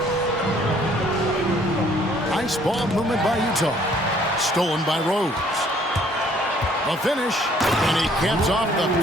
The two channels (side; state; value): both; normal; correlation 0.61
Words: Nice ball movement by Utah. Stolen by Rose. A finish, and he caps off the